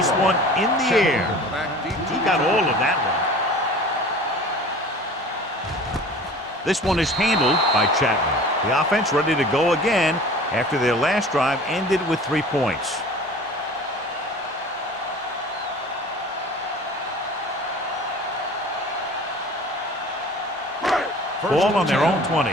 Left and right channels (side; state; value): both; normal; correlation 0.43